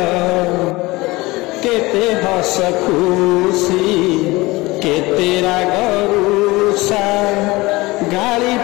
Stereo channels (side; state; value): right; quieter; 21.5 dB